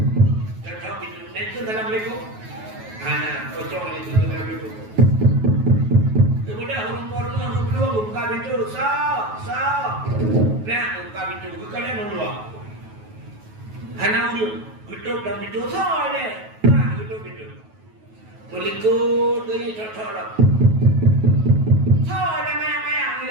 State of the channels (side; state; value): left; late; 9.3 ms